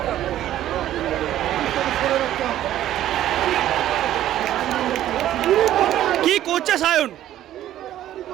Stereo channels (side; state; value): left; quieter; 12.6 dB